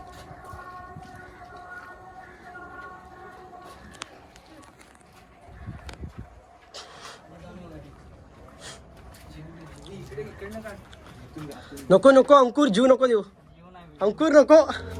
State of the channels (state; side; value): identical; both; correlation 1.00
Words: नको नको अंकुर, जीव नको देऊ अंकुर, नको.